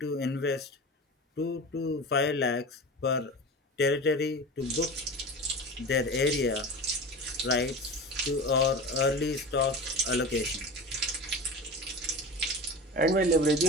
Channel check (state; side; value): normal; both; correlation 0.30